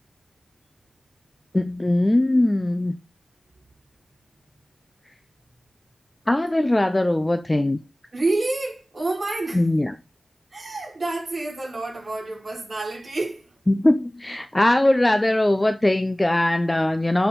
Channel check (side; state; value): both; normal; correlation 0.98